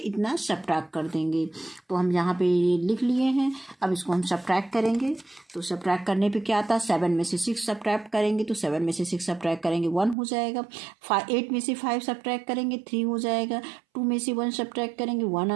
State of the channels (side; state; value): left; drops out; at 10.2 s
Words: सब्ट्रैक्ट कर देंगे। तो हम यहाँ पे लिख लिए हैं। अब इसको हम सब्ट्रैक्ट करेंगे तो सब्ट्रैक्ट करने पे क्या आता है 7 में से 6 सब्ट्रैक्ट करेंगे तो 7 में से 6 सब्ट्रैक्ट करेंगे 1 हो जाएगा। 8 में से 5 सब्ट्रैक्ट करेंगे 3 हो जाएगा। 2 में से 1 सब्ट्रैक्ट करेंगे 1